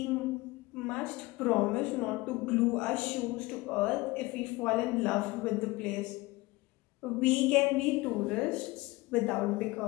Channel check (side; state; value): right; quieter; 21.6 dB